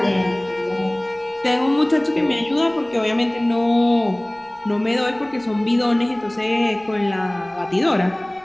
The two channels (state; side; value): noise; right; rumble, 28 dB below the sound